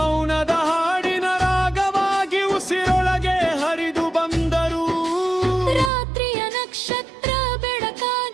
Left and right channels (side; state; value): left; drops out; at 5.9 s